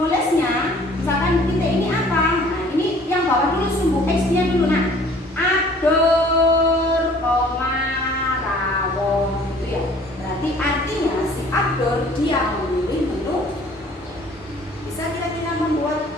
misalkan titik ini apa? Nah,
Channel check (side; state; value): both; normal; correlation 0.53